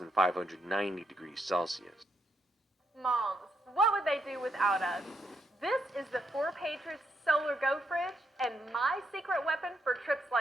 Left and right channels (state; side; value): normal; both; correlation 0.78